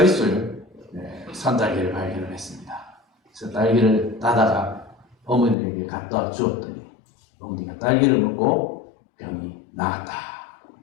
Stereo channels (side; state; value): right; drops out; at 5.6 s